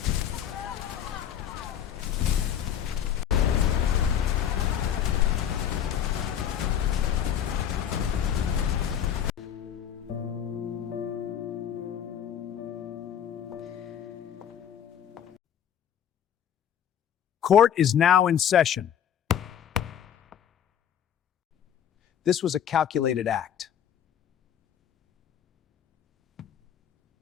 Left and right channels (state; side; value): quieter; right; 9.3 dB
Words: Court is now in session. This was a calculated act.